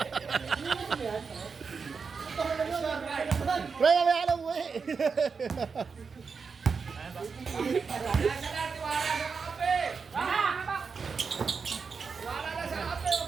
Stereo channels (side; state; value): left; quieter; 5.3 dB